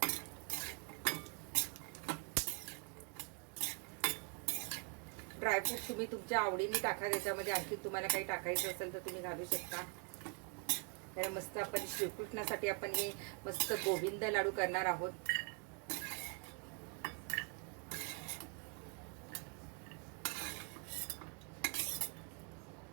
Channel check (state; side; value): quieter; left; 36.6 dB